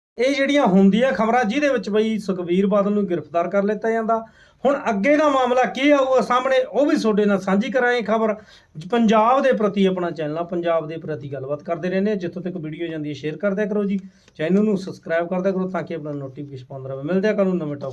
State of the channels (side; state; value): both; identical; correlation 1.00